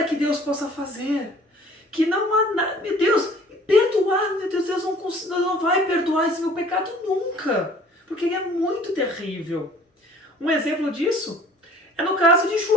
que Deus possa fazer. Que não há nada, meu Deus, perdoar, meu Deus, Deus não vai perdoar esse meu pecado nunca. Porque ele é muito terrível. Um exemplo disso é no caso de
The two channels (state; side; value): normal; both; correlation 0.51